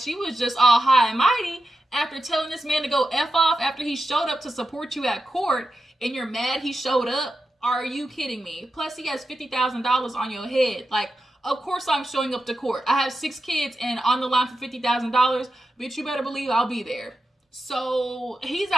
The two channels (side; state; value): both; normal; correlation 0.90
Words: was just all high and mighty after telling this man to go F off after he showed up to support you at court, and you're mad he showed up? Are you kidding me? Plus, he has $50,000 on your head. Like, of course I'm showing up to court. I have 6 kids and on the line for $50,000. Bitch, you better believe I'll be there. So he's